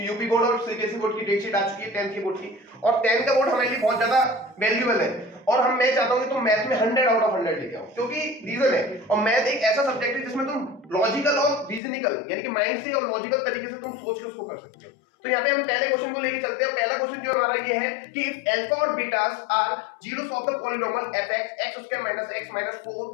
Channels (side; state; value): right; drops out; at 11.8 s